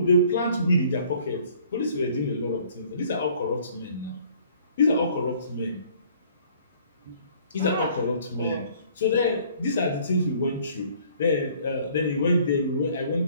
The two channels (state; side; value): inverted; both; correlation -0.57